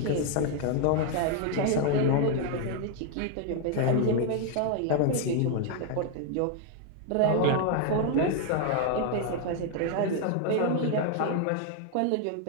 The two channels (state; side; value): different; both; correlation 0.00